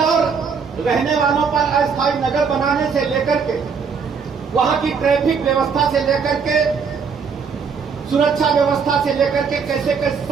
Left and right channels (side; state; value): left; quieter; 5.8 dB